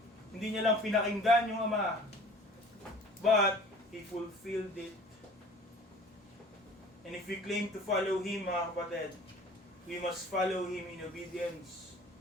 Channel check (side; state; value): both; normal; correlation 0.47